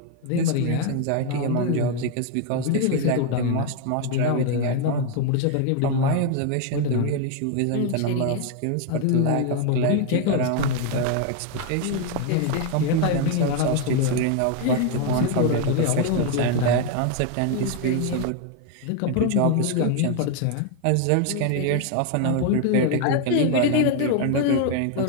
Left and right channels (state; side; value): different; both; correlation 0.01